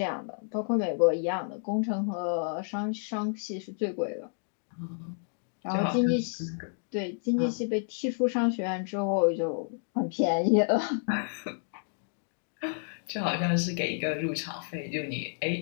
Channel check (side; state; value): right; silent; 58 dB below the other